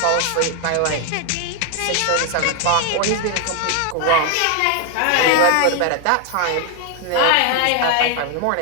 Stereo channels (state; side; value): different; both; correlation 0.01